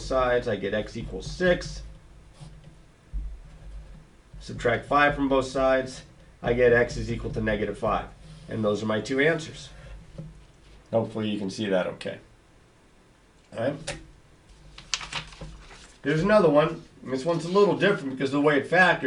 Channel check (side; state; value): both; identical; correlation 1.00